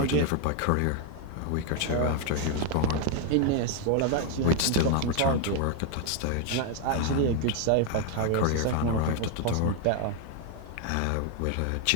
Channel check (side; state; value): both; different; correlation 0.01